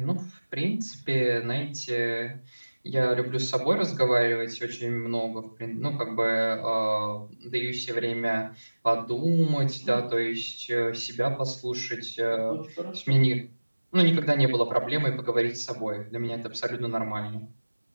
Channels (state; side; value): inverted; both; correlation -1.00